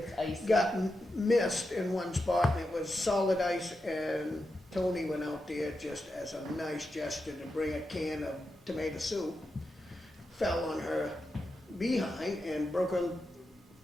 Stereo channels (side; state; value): both; normal; correlation 0.88